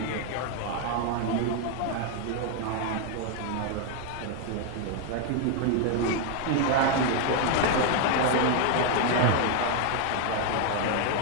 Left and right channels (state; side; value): different; both; correlation 0.01